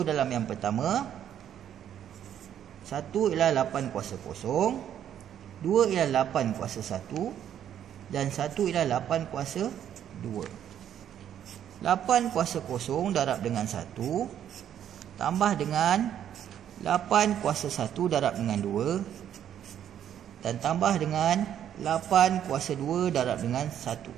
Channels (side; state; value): left; quieter; 10.1 dB